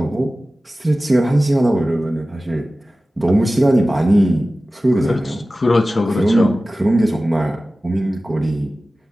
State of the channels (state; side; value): normal; both; correlation 0.96